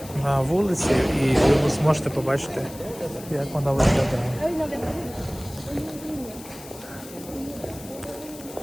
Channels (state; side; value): noise; left; hiss, 17 dB below the sound